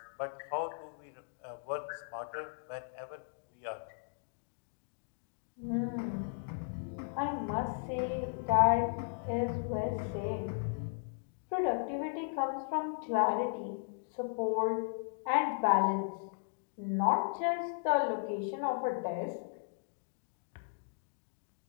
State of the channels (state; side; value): silent; right; digital silence